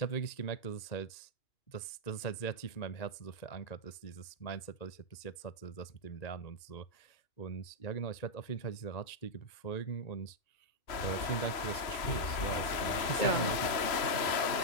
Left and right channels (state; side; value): late; right; 3.0 ms